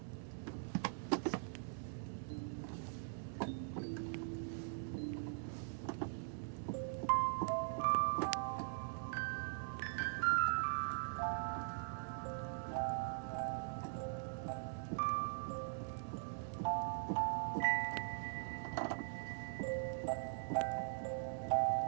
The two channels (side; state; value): left; silent; digital silence